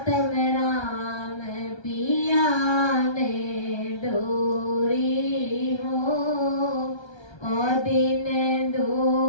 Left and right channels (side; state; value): right; late; 1.3 ms